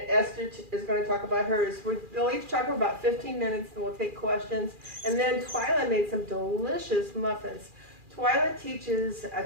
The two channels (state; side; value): late; left; 2.4 ms